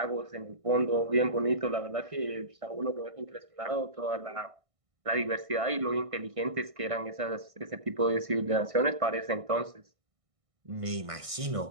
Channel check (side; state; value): left; late; 1.6 ms